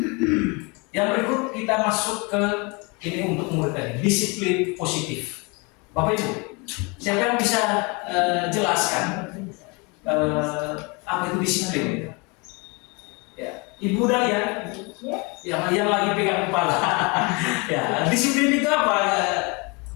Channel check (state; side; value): quieter; right; 29.5 dB